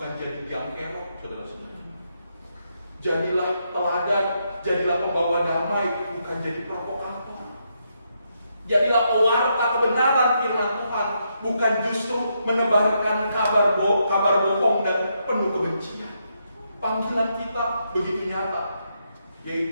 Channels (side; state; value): both; inverted; correlation -0.80